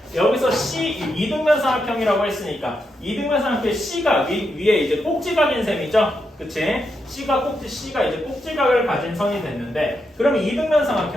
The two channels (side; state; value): both; normal; correlation 0.83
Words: 여기서 이등변 삼각형이라고 했으니까 이등변 삼각형의 C가 위에 이제 꼭지각인 셈이죠. 그치? C가 이제 꼭지각을 가진 선이 됐는데 그럼 이등변